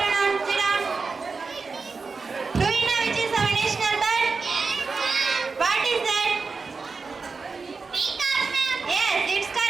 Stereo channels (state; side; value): quieter; left; 4.5 dB